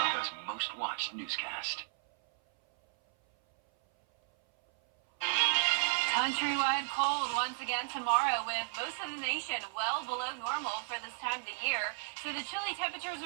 most watched newscast. Countrywide cold once again tomorrow, with most of the nation well below normal for this time of the year. So the chilly temperatures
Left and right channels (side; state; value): left; silent; 55 dB below the other